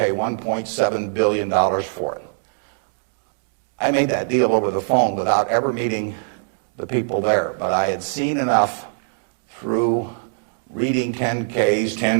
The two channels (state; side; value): silent; left; digital silence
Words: $1.7 billion for it. I made that deal over the phone without ever meeting the people there, but I had seen enough through reading 10Ks,